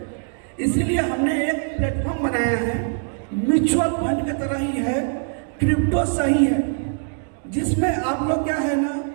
इसीलिए हमने एक प्लेटफॉर्म बनाया है, म्यूचुअल फंड की तरह ही है, क्रिप्टो सही है, जिसमें आप लोग क्या है ना,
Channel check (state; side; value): silent; left; 64 dB below the other